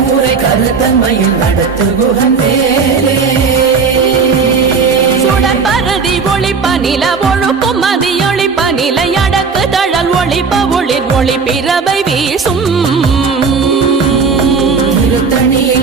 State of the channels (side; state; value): left; quieter; 5.2 dB